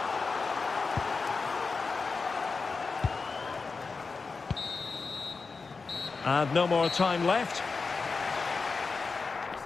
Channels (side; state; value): right; quieter; 4.5 dB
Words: And no more time left.